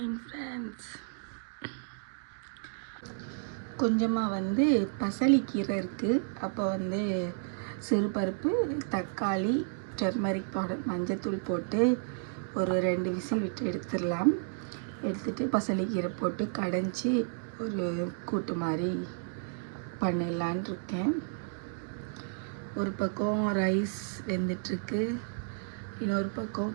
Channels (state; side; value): silent; left; digital silence